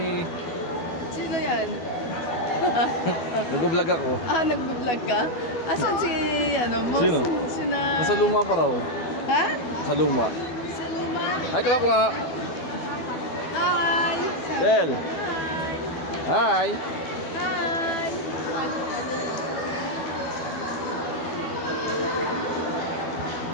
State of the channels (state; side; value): late; right; 12 ms